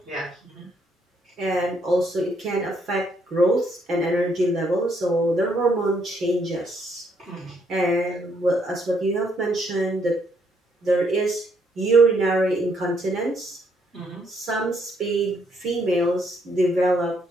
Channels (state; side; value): normal; both; correlation 0.71